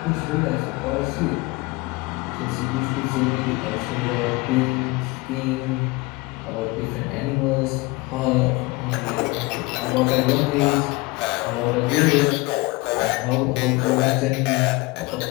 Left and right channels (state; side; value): quieter; right; 23.7 dB